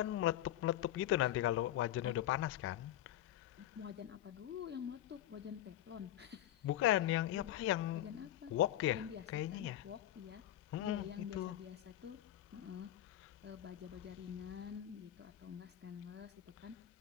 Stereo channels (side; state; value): right; quieter; 12.9 dB